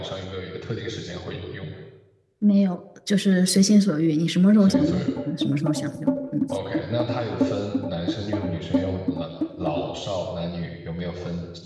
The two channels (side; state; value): both; identical; correlation 1.00